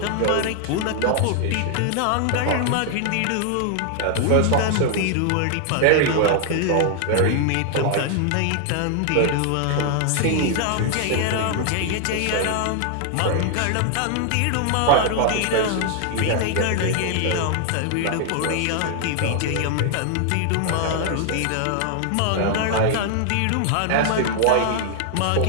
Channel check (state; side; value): different; both; correlation 0.00